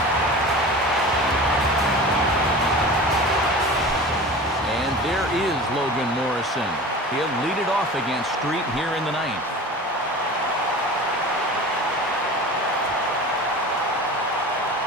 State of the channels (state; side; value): normal; both; correlation 0.36